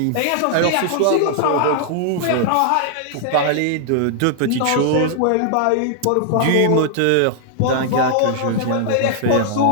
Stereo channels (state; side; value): different; both; correlation 0.00